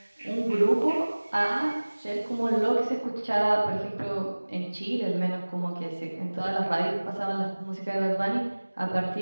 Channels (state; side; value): inverted; both; correlation -1.00